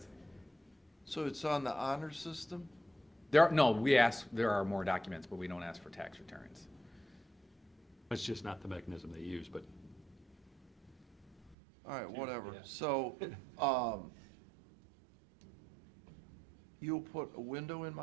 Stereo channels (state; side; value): drops out; left; at 11.6 s